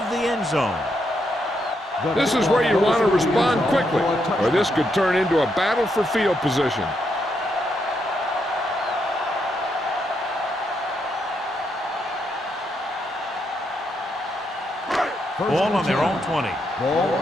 the end zone. This is where you want to respond quickly, or this could turn into a battle for field position. Ball on their own 20. Ball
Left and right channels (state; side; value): normal; both; correlation 0.79